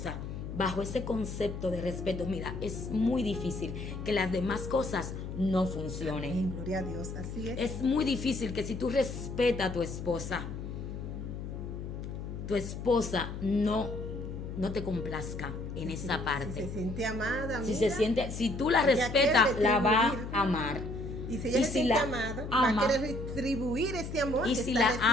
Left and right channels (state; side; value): noise; left; hum, 7 dB below the sound